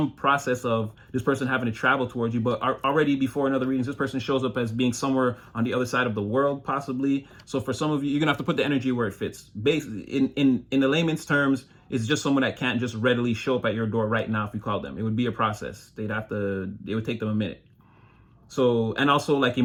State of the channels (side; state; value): both; identical; correlation 1.00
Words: process of this person having to travel towards you, but already before in other readings, this person shows up as being somewhere on the other side of the world, possibly. So for some of you, you're gonna have to put the energy where it fits. Basically, in the layman's terms, it's just someone that can't just readily show up at your door right now if you call them. It would be a process. It would take them a minute. So, and also like